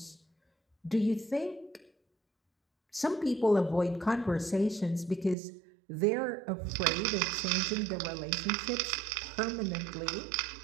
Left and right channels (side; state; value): left; drops out; at 5.4 s